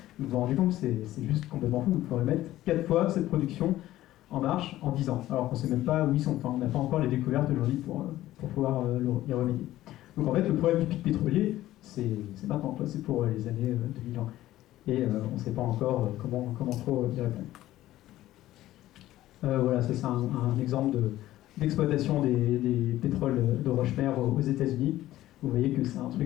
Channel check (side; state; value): right; quieter; 14.8 dB